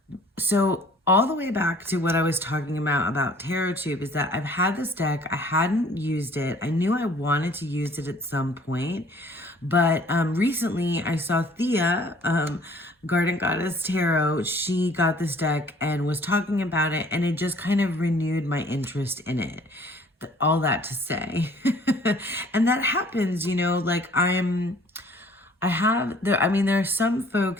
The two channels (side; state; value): both; normal; correlation 0.54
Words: so all the way back to what I was talking about Tarot Tube is that I've had this deck. I hadn't used it. I knew I wanted to use it at some point, but recently I saw Thea, Garden Goddess Tarot. She got this deck and was talking about it, and it just kind of renewed my interest in it. All that to say. And that happens, you know, like there are some